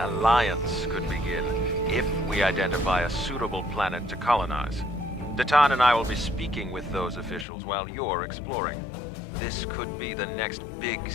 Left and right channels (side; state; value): right; drops out; at 7.5 s